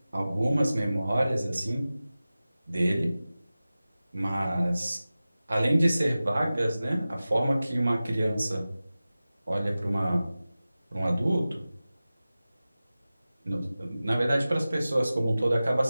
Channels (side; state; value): both; inverted; correlation -0.96